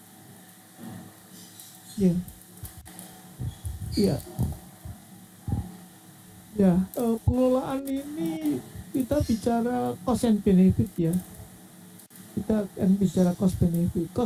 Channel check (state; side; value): identical; both; correlation 1.00